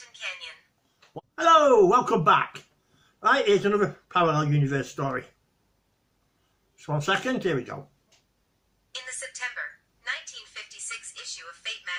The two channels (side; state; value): both; identical; correlation 1.00